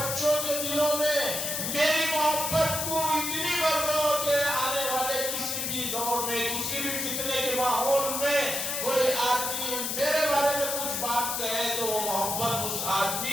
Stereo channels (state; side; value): noise; left; hiss, 1 dB below the sound